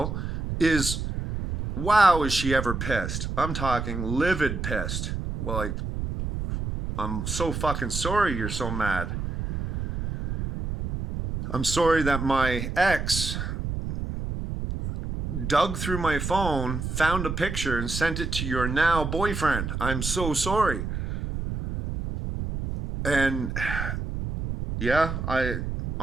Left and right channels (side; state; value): right; noise; rumble, 4 dB below the sound